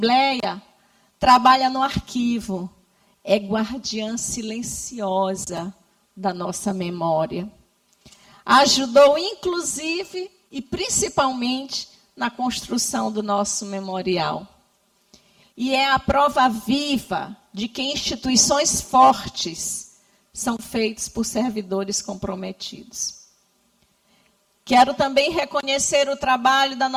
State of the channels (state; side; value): identical; both; correlation 1.00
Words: trabalha no arquivo, é guardiã silenciosa da nossa memória. Ajudou, inclusive, e principalmente, na construção do nosso memorial. E é a prova viva de que instituições fortes são feitas por servidores comprometidos. Quero também reconhecer o trabalho da